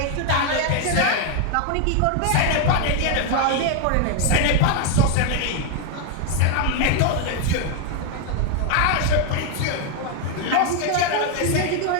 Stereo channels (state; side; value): different; both; correlation 0.01